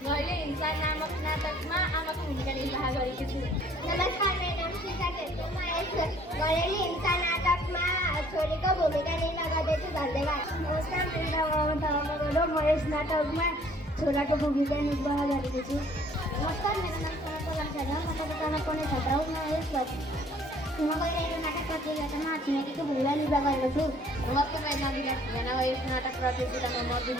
हिंसा नामक नाटकमा आमाको भूमिका निर्वाह गरेकी छु। नमस्कार, मेरो नाम शिखा छेत्री, म यस घरेलु हिंसा नाटकमा छोरीको भूमिका निर्वाह गर्दैछु। धन्यवाद। नमस्कार, मेरो नाम अमन थापा, म यस नाटकमा छोराको भूमिका निर्वाह गरेको छु। नमस्कार, मेरो नाम सनत शर्मा, म कक्षा 7 मा पढ्ने छात्र हुँ। म गइरहेको नाटक प्रतियोगितामा छिमेकीको भूमिका निर्वाह गरेको छु। नमस्ते, मेरो नाम विकास भुजेना, यस नाटक प्रतियोगितामा म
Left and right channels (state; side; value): normal; both; correlation 0.57